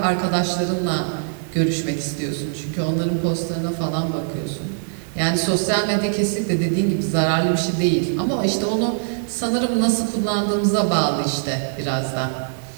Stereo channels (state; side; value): silent; left; digital silence